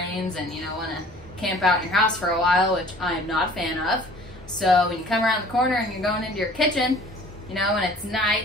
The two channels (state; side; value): normal; both; correlation 0.50